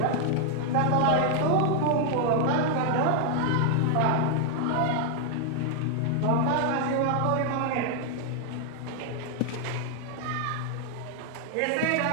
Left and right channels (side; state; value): both; different; correlation 0.00